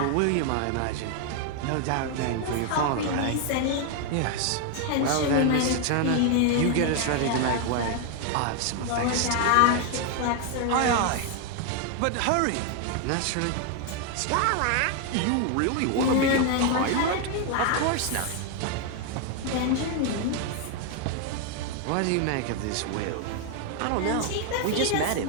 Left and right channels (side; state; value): both; different; correlation 0.01